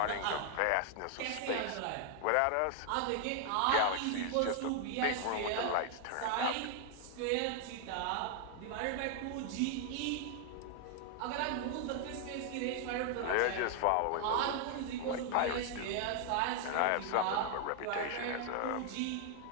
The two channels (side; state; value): both; different; correlation 0.00